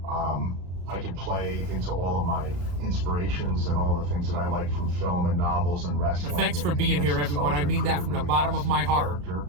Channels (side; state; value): left; late; 34 ms